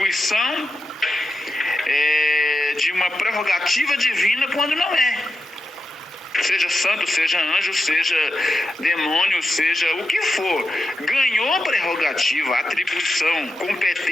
de uma prerrogativa divina quando não é. Seja santo, seja anjo, seja demônio, seja o que for. Ganhou prerrogativa, atribuição,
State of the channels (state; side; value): normal; both; correlation 0.88